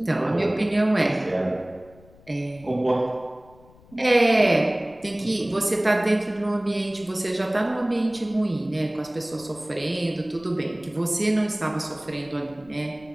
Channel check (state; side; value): noise; left; rumble, 25 dB below the sound